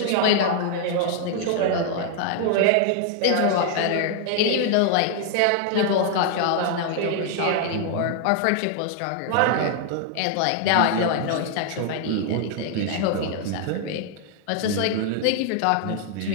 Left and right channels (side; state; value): both; different; correlation 0.00